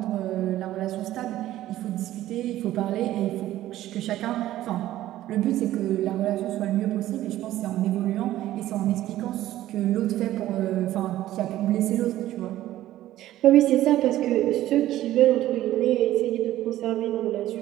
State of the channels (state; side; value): quieter; left; 14.2 dB